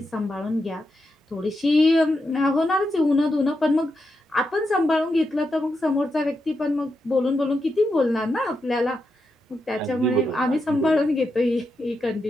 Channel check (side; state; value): both; normal; correlation 0.85